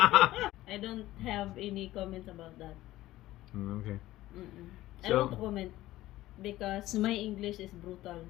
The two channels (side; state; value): right; quieter; 15.9 dB